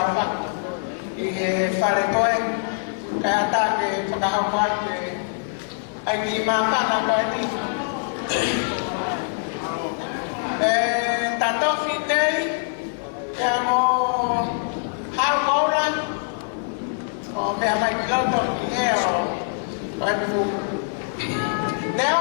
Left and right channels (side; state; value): right; silent; 63 dB below the other